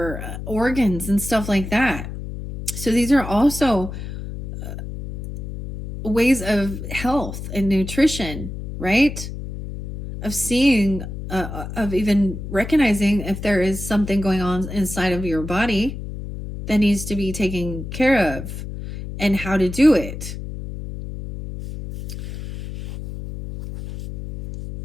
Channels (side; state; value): left; noise; hum, 8 dB below the sound